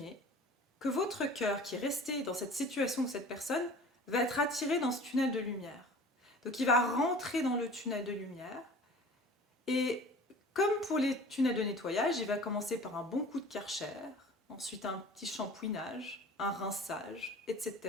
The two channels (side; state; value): both; normal; correlation 0.43